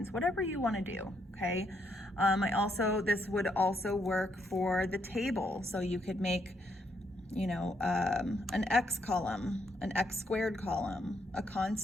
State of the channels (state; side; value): normal; both; correlation 0.75